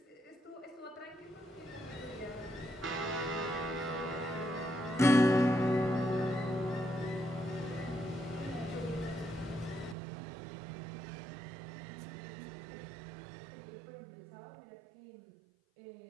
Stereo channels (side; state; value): left; drops out; at 10.0 s